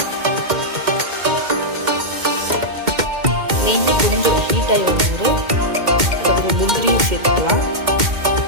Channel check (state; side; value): late; left; 2.1 ms